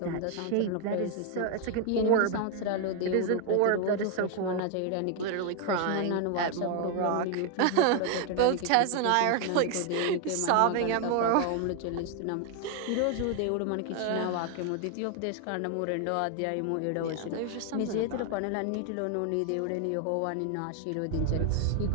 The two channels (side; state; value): both; different; correlation 0.00